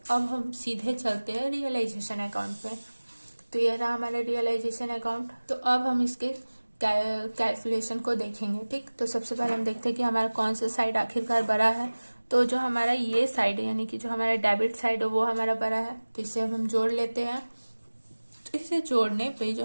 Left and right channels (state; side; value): inverted; both; correlation -1.00